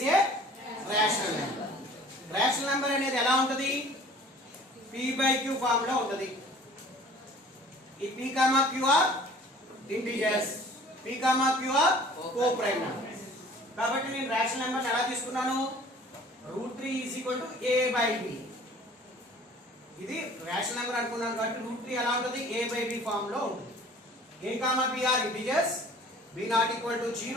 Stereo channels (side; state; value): both; normal; correlation 0.49